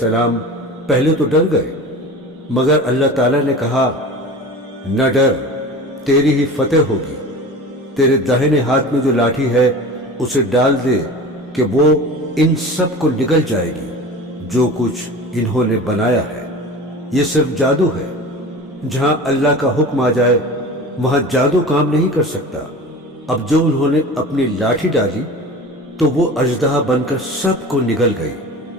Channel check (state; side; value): normal; both; correlation 0.35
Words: پہلے تو ڈر گئے، مگر اللہ تعالیٰ نے کہا، نہ ڈر، تیری ہی فتح ہوگی، تیرے داہنے ہاتھ میں جو لاٹھی ہے اسے ڈال دے کہ وہ ان سب کو نگل جائے گی جو کچھ انہوں نے بنایا ہے۔ یہ صرف جادو ہے، جہاں اللہ کا حکم آ جائے وہاں جادو کام نہیں کر سکتا۔ اب جو انہوں نے اپنی لاٹھی ڈالی تو وہ اژدہا بن کر سب کو نگل گئی۔